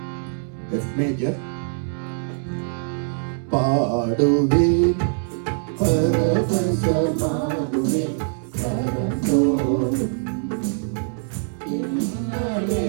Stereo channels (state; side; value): silent; left; 63 dB below the other